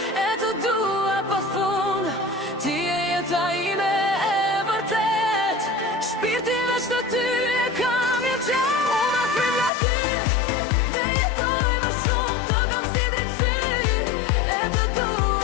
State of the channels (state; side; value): drops out; right; at 9.7 s